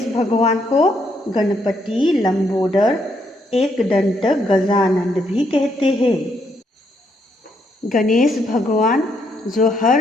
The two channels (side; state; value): both; normal; correlation 0.74